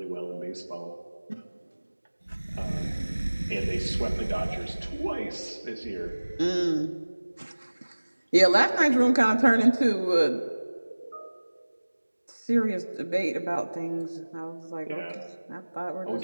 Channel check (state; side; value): inverted; both; correlation -1.00